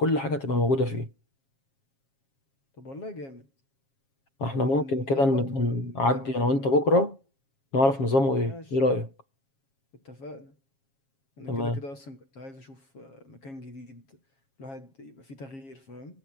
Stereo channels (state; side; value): late; right; 7.4 ms